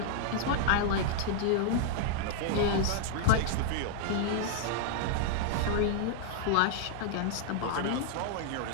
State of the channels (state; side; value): different; both; correlation -0.01